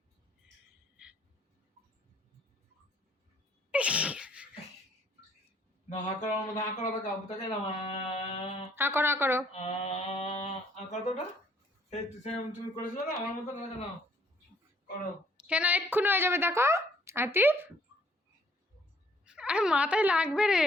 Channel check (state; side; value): normal; both; correlation 0.64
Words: হা করো, হা করো। এই তুমি করেছিলে না আমার মতো না করো। কেন এক্ষুনি হয়ে যাবে দেখো আতিফ, আরে মাথায় লাগবে রে।